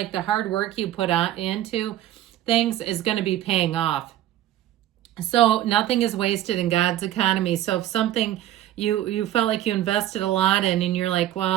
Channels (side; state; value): left; quieter; 13.2 dB